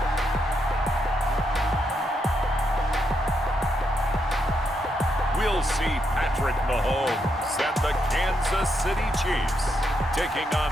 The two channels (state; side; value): normal; both; correlation 0.80